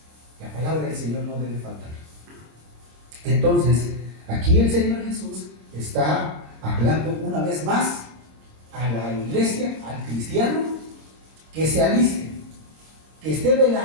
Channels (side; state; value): left; late; 26 ms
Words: La palabra del Señor no debe faltar. Entonces, aquí el Señor Jesús está hablando una vez más a la iglesia, al cristiano, que se aliste, que esté